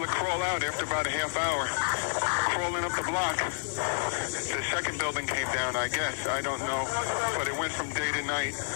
crawl out after about a half hour. Crawling up the block. The second building came down, I guess. I don't know. But it went from day to night.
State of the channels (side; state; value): right; silent; digital silence